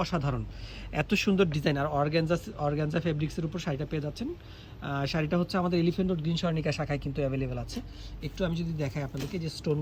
অসাধারণ। এত সুন্দর ডিজাইন, আর অর্গানজা ফেব্রিক্সের উপর শাড়িটা পেয়ে যাচ্ছেন। শাড়িটা হচ্ছে আমাদের এলিফেন্ট রোড গ্রিন স্বর্ণিকা শাখায় কিন্তু অ্যাভেলেবেল আছে। একটু আমি যদি দেখাই আপনাদেরকে, যে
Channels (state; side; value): identical; both; correlation 1.00